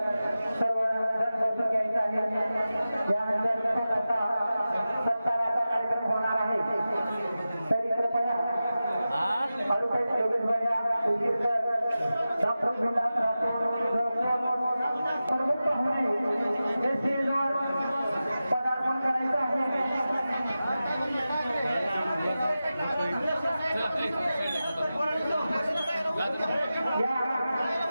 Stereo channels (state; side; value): inverted; both; correlation -0.94